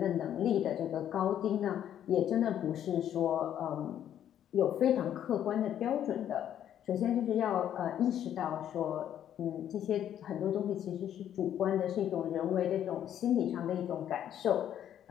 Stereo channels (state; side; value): quieter; right; 10.4 dB